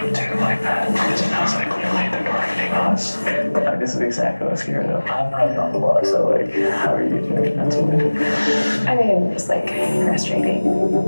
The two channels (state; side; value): inverted; both; correlation -1.00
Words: to do like that. It sounds like clearly they're targeting us. Like, this is exactly what I was scared of. I'm not on the block, so like, how are you doing mentally? I mean, just like frustrating.